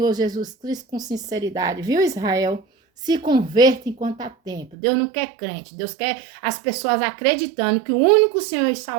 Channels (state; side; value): drops out; left; at 4.8 s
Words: Jesus Cristo com sinceridade, viu, Israel? Se converta enquanto há tempo. Deus não quer crente, Deus quer as pessoas acreditando que o único Senhor e